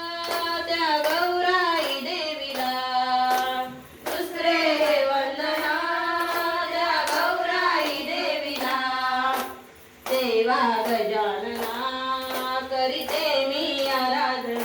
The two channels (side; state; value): both; identical; correlation 1.00